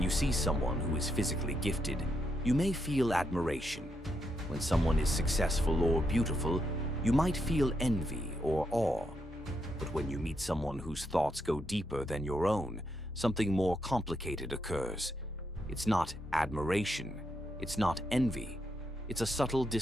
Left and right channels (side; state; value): both; normal; correlation 0.81